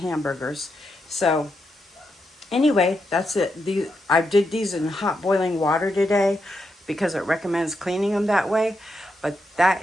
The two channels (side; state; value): both; normal; correlation 0.83